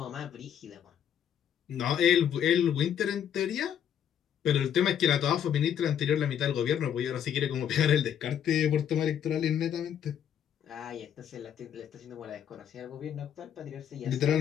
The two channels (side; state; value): right; quieter; 9.3 dB